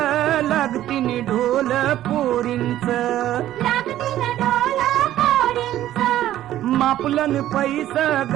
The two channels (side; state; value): left; quieter; 13.1 dB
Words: लागतीन ढोल पोरींच लागतील ढोल पोरींच मापलन पैसा